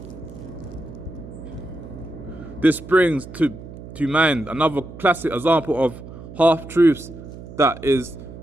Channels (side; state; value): right; noise; hum, 14 dB below the sound